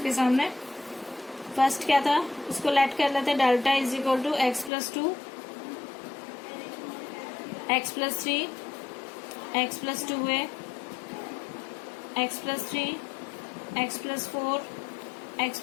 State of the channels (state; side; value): drops out; right; at 4.7 s